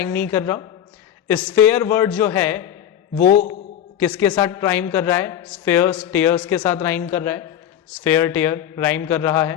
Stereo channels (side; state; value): right; quieter; 10.5 dB